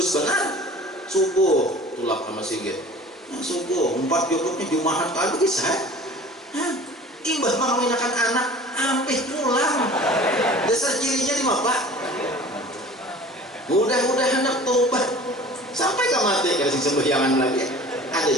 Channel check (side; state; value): both; normal; correlation 0.44